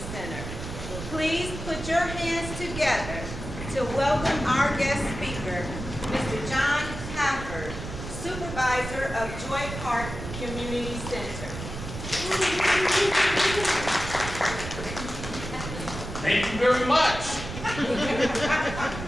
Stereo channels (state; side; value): noise; right; rumble, 8 dB below the sound